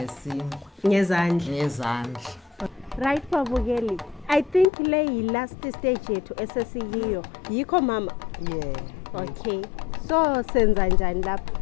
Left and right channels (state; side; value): drops out; right; at 4.7 s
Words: ngezandla. Right babukeli, I think le last stage yethu esesiyiyo yikho mama. Okay, so senza njani lapha?